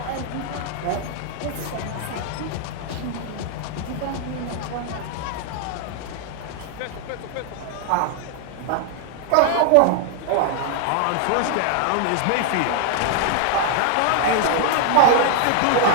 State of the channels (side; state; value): both; different; correlation 0.00